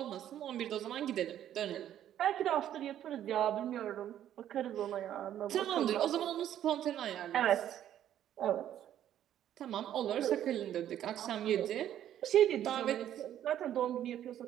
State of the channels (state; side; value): quieter; left; 11.1 dB